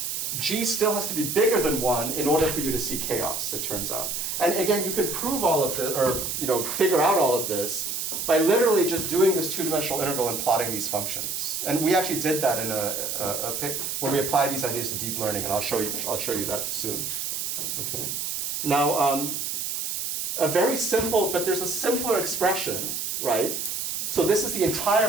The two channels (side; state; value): right; noise; hiss, 3 dB below the sound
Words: g still has to be bigger than 1 in order for you to see chaos, it turns out. And again, you can prove all of this, or figure out all of this by literally just doing this two-dimensional integral and plotting these functions. And we actually did that in when we applied these ideas to deep learning, and I'll show you that soon. Okay. Now, a very simple, but there's a simpler expression, right? So this is the entire